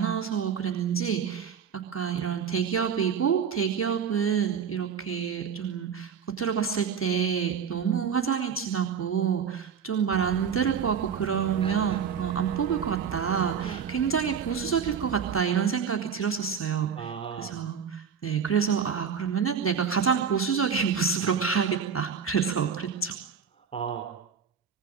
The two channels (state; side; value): quieter; left; 7.0 dB